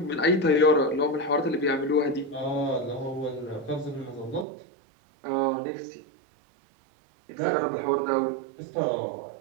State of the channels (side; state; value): left; drops out; at 4.5 s